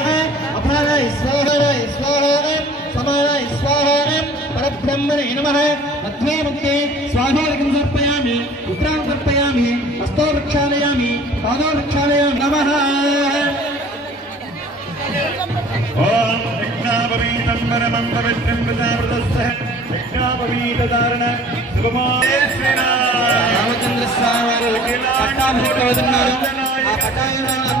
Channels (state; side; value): normal; both; correlation 0.48